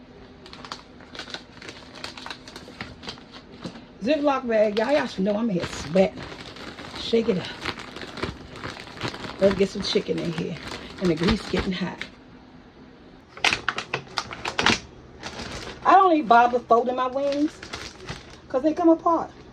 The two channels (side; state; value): both; identical; correlation 1.00